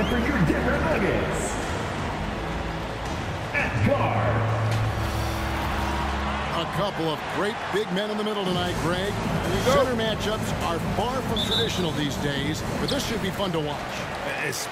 for your Denver Nuggets. At guard. A couple of great big men in the middle tonight, Greg. Center matchups are far from traditional these days, but this should be fun to watch.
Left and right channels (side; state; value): both; identical; correlation 1.00